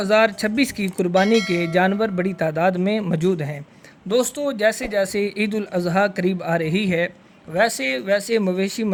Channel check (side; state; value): both; identical; correlation 1.00